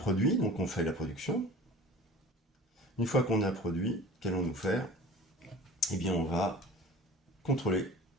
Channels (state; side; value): normal; both; correlation 0.42